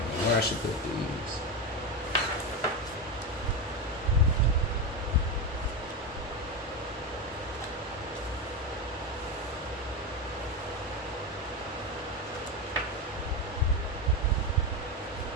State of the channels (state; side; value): normal; both; correlation 0.14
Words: where I should put these.